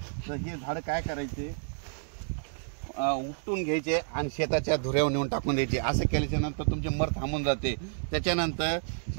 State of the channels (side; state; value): left; silent; digital silence